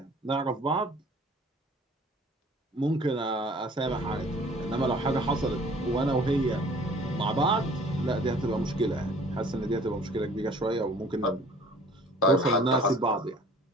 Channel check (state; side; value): normal; both; correlation 0.51